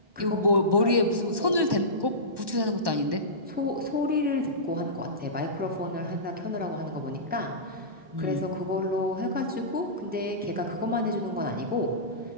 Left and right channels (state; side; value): late; left; 1.1 ms